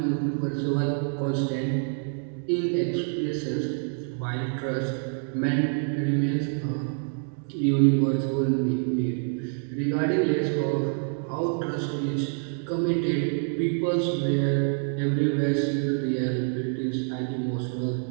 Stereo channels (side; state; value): left; silent; 60 dB below the other